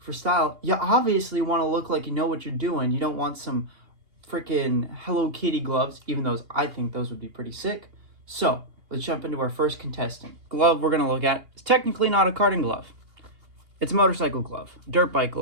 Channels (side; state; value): left; late; 2.8 ms